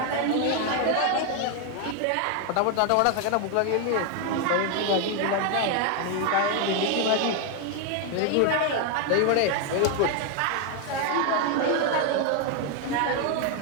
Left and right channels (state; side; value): different; both; correlation 0.01